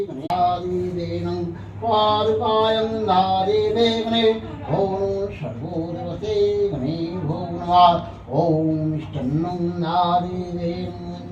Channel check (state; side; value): identical; both; correlation 1.00